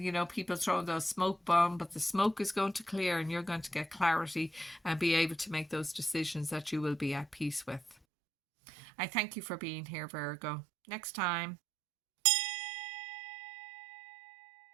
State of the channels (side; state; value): left; drops out; at 8.0 s